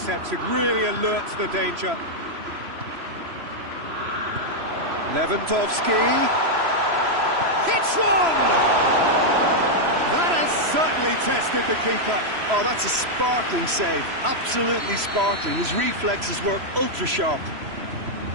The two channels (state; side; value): late; left; 3.0 ms